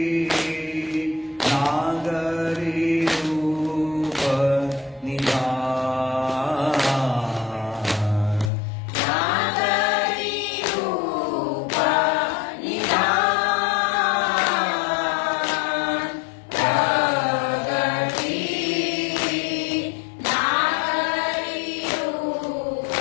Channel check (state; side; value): drops out; right; at 8.5 s